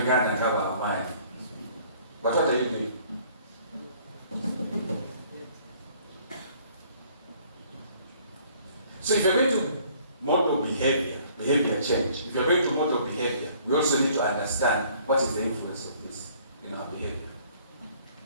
ngaba amaanyi. But what are you doing? So if you're going to model behavior change, if you're going to model behavior, we also need to understand what is the influence of this in our behavior.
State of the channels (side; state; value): both; inverted; correlation -0.58